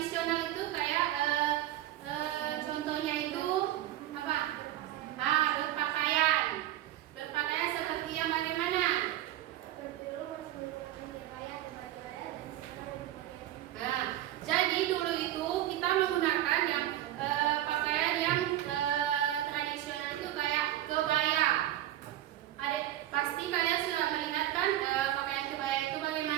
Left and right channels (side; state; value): left; quieter; 13.5 dB